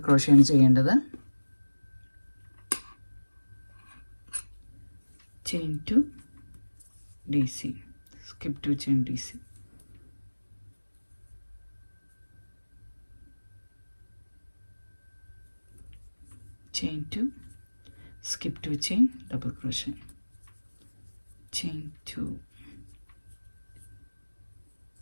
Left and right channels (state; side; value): inverted; both; correlation -1.00